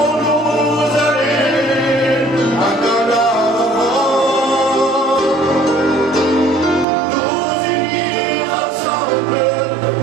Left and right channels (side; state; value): left; drops out; at 6.9 s